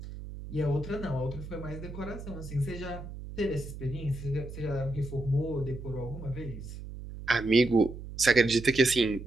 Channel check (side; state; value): right; noise; hum, 11 dB below the sound